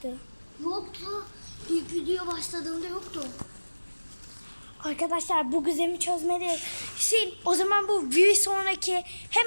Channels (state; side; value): inverted; both; correlation -1.00